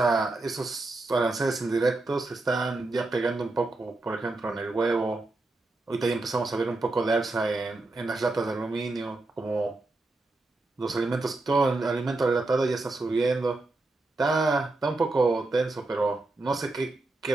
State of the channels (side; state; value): left; quieter; 3.1 dB